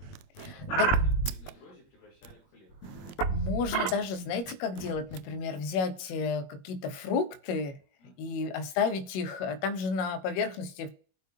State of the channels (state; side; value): late; right; 21 ms